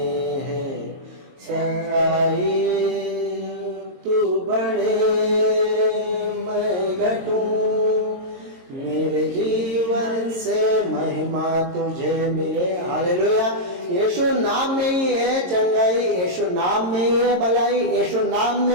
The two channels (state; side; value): late; left; 22 ms